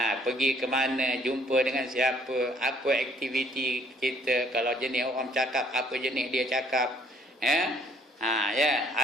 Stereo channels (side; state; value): both; normal; correlation 0.62